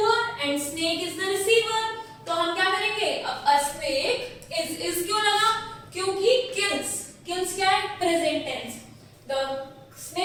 and snake is the receiver. तो हम क्या करेंगे, अब अ स्नेक इज क्यों लगा, क्योंकि किल्स क्या है, present tense. The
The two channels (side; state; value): both; identical; correlation 1.00